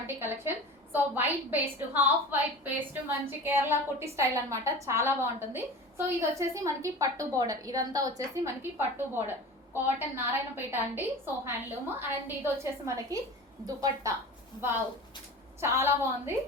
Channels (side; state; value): both; normal; correlation 0.35